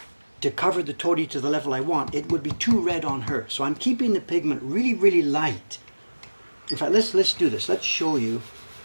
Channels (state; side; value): inverted; both; correlation -1.00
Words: to cover the tori to the level I want, it would be too red on her. So I'm keeping the pigment really, really light. In fact, let's do this. Let's show you.